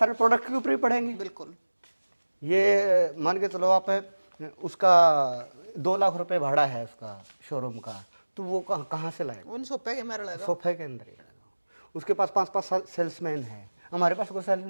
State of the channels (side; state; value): both; inverted; correlation -1.00